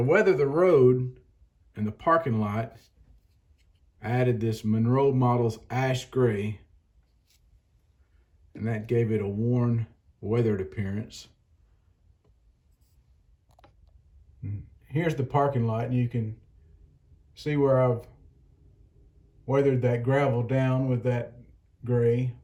weather the road and the parking lot, I added this Monroe Models ash gray, and that gave it a worn, weathered appearance. And here's the parking lot, and you can see where I've weathered that gravel down with that gray.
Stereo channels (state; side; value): identical; both; correlation 1.00